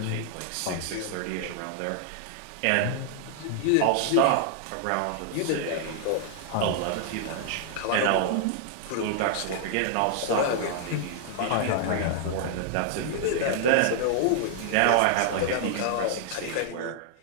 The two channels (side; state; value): both; different; correlation 0.00